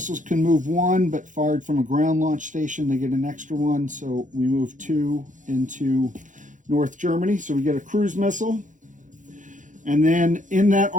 can move 1, but fired from a ground launch station, they get an extra 1. So we move 2 into North Germany. So we get a cruise missile. And then in that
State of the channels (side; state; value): left; late; 0.37 ms